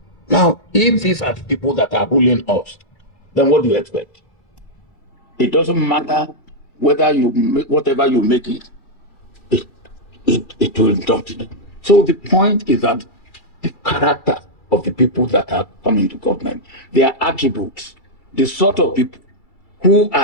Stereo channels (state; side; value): late; right; 2.3 ms